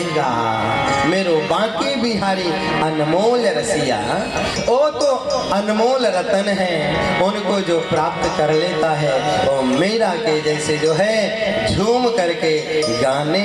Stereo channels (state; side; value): identical; both; correlation 1.00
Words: मेरो बांके बिहारी अनमोल रसिया, वो तो अनमोल रतन है, उनको जो प्राप्त कर लेता है वो मेरा के जैसे जो है झूम करके गाने